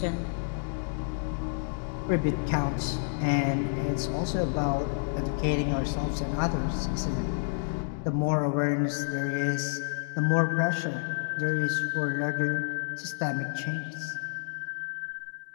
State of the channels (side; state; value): right; silent; digital silence